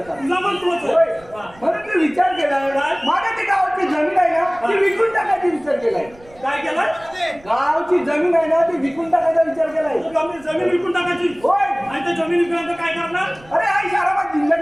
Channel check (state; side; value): noise; right; rumble, 25 dB below the sound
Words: तुझा पण तोच आहे. होय. हा. म्हणून मी विचार केलाय काय? माझ्या ती गावाची जमीन आहे ना ती विकून टाकायची विचार केलाय. काय केलं? गावची जमीन आहे ना ती विकून टाकायचा विचार केलाय. जमीन विकून टाकायची. होय. आणि त्या जमीन विकल्यानंतर काय करणार? अरे आई शाराबाद